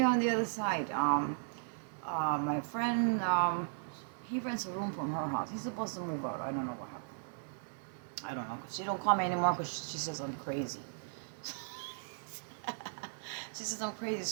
on the other side. My friend, he rents a room from her house. He's supposed to move out. I don't know what happened. I don't know. She don't call me anymore because she says I'm crazy. She says I'm crazy,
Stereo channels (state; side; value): silent; left; digital silence